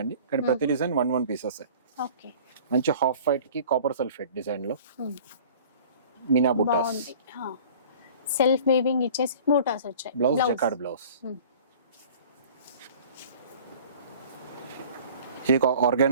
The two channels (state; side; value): inverted; both; correlation -0.46